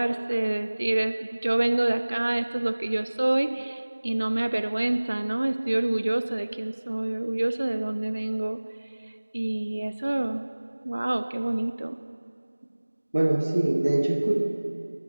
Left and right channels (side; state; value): both; inverted; correlation -1.00